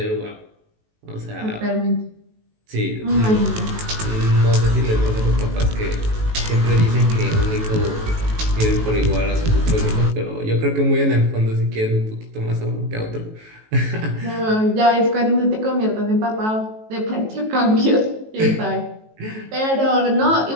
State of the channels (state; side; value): late; left; 18 ms